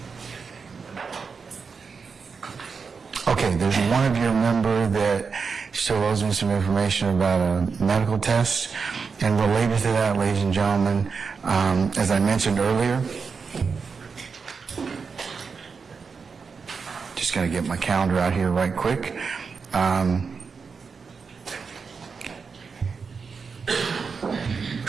Okay, there's one of your member that still owes me some information about a medical test. And related to that, ladies and gentlemen, as I mentioned earlier, just going to get my calendar out here right quick.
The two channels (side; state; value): left; quieter; 5.3 dB